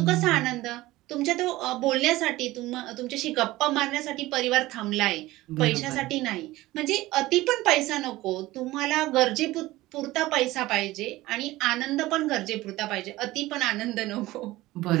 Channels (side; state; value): left; quieter; 18.0 dB